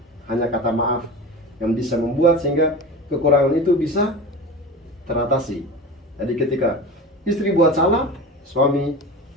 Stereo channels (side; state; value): both; normal; correlation 0.31